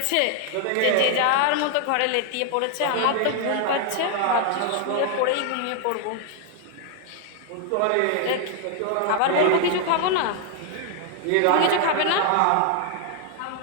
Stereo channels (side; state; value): both; different; correlation 0.00